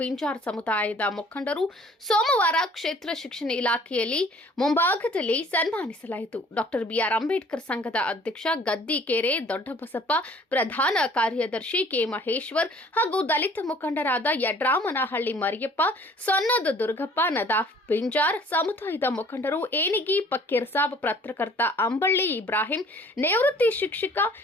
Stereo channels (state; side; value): normal; both; correlation 0.54